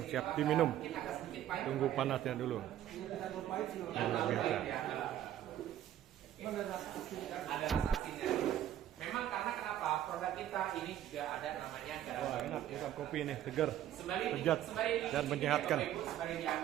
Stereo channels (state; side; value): quieter; left; 11.8 dB